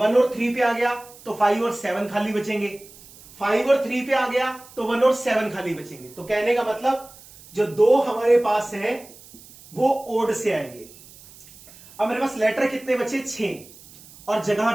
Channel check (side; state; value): right; noise; hiss, 22 dB below the sound